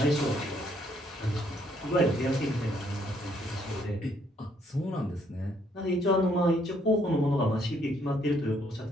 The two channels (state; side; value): normal; both; correlation 0.69